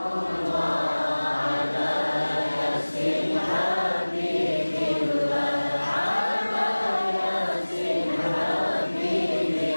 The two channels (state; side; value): inverted; both; correlation -1.00